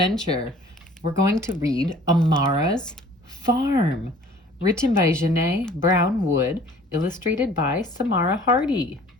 We're going to read Amara'S Farm, written by Janae Brown Wood, illustrated by Samara Hardy.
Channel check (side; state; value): both; normal; correlation 0.51